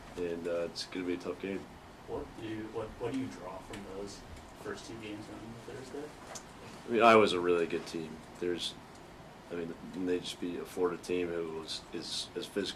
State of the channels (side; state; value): both; identical; correlation 1.00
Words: and it's going to be a tough game. What do you draw from those first two games on Thursday? I mean, Iowa's a really good team. They just beat a Florida team who is as